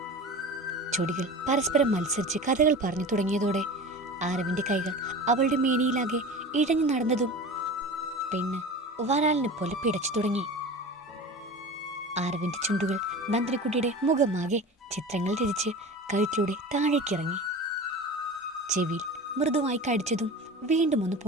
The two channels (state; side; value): normal; both; correlation 0.34